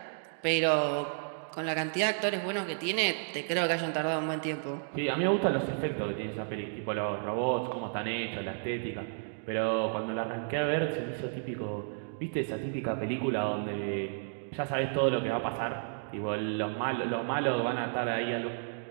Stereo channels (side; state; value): left; silent; digital silence